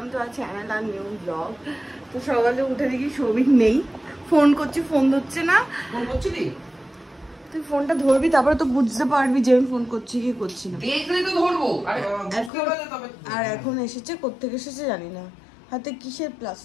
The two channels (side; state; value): right; drops out; at 12.5 s